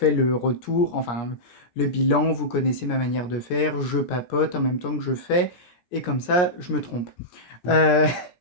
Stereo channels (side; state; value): right; late; 17 ms